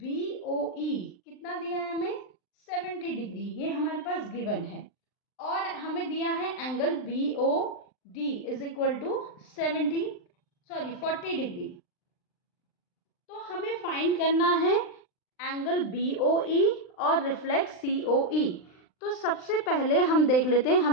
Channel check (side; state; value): right; late; 39 ms